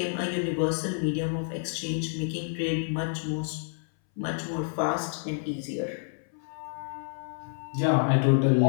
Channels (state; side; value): silent; right; 59 dB below the other